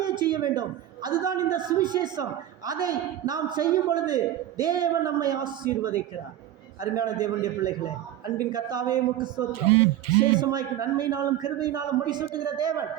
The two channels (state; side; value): quieter; left; 12.3 dB